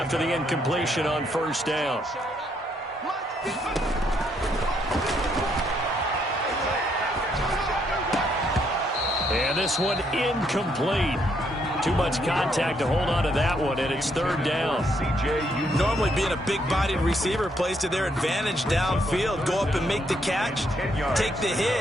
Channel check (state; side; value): normal; both; correlation 0.73